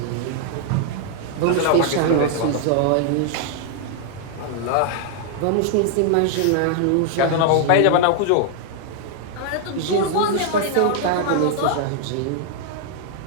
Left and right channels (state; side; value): different; both; correlation 0.00